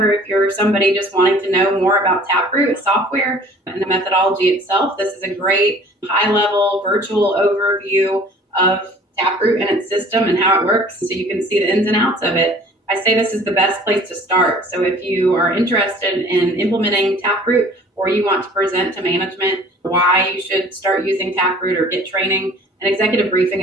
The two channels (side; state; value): both; normal; correlation 0.50